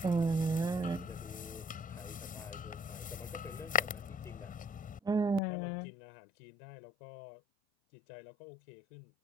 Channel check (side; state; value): right; drops out; at 5.4 s